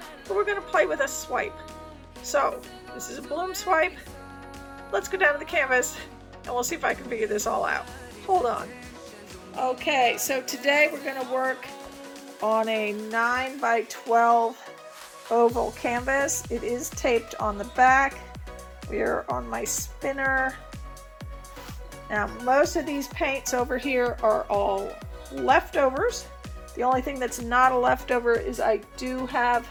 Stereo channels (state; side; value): identical; both; correlation 1.00